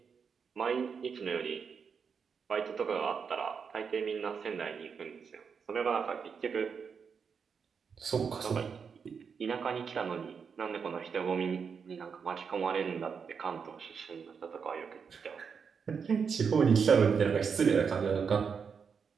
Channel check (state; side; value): quieter; left; 6.2 dB